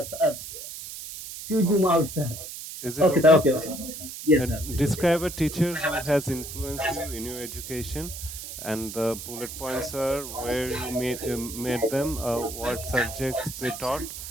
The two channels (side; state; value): right; noise; hiss, 10 dB below the sound